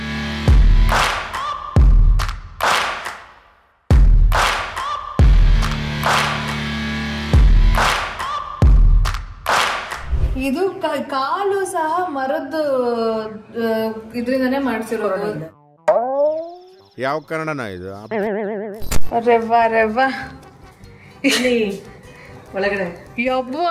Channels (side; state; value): both; identical; correlation 1.00